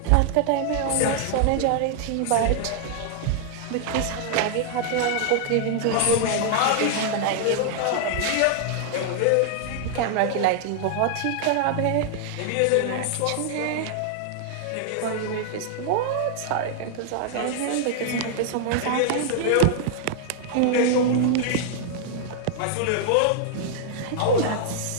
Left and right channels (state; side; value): different; both; correlation 0.00